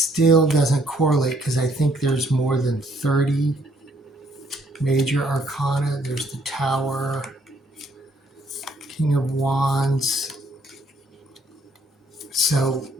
doesn't correlate, because I think there's more than 30 major arcana. There's the Tower, King of Wands. So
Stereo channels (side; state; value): both; normal; correlation 0.66